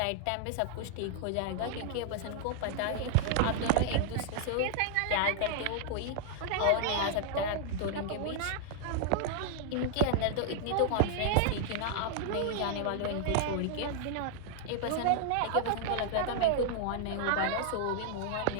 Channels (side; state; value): both; different; correlation -0.01